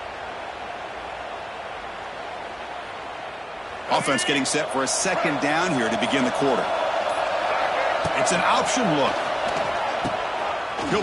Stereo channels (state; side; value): identical; both; correlation 1.00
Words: Offense getting set for a 2nd down here to begin the quarter. It's an option look.